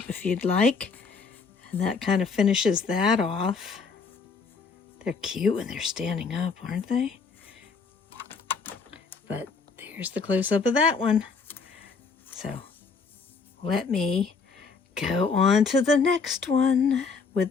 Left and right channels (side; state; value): right; quieter; 4.9 dB